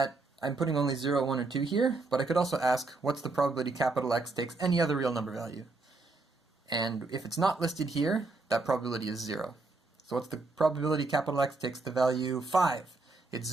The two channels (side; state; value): left; quieter; 3.5 dB